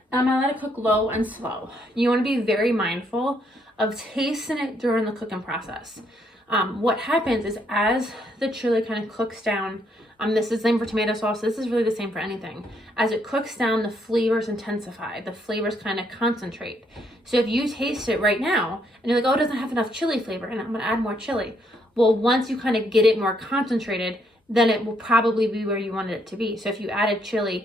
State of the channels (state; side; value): normal; both; correlation 0.72